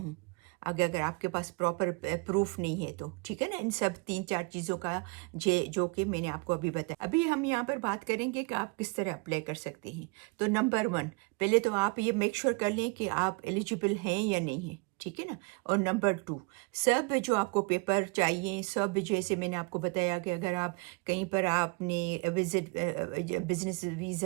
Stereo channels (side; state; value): left; quieter; 31.3 dB